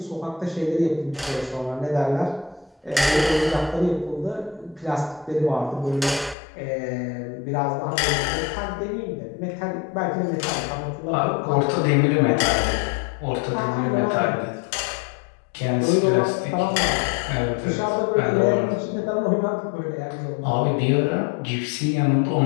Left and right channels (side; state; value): right; drops out; at 6.4 s